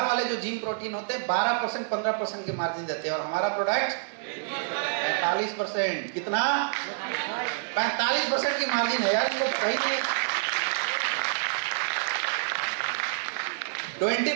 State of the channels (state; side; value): silent; left; digital silence